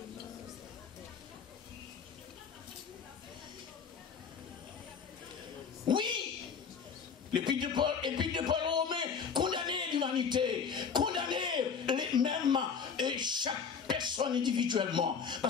Oui, l'épître de Paul Romain condamner l'humanité, condamner les mêmes et chaque personne individuellement,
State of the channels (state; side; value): quieter; right; 6.3 dB